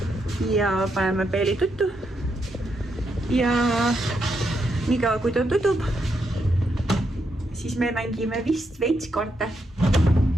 ja paneme Peili tuttu. Ja niikaua kui ta tutub, siis me mängime vist veits kaarte,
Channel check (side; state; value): both; normal; correlation 0.81